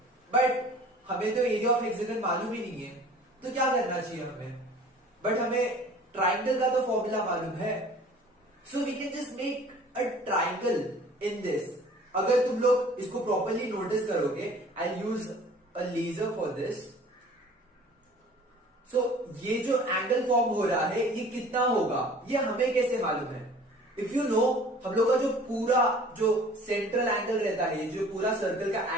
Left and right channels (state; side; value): normal; both; correlation 0.48